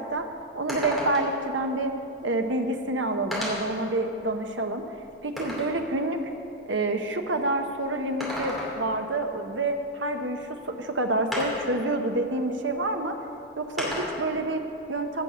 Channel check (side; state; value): both; normal; correlation -0.03